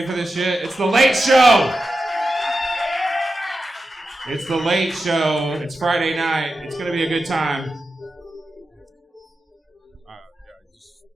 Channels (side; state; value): both; normal; correlation 0.91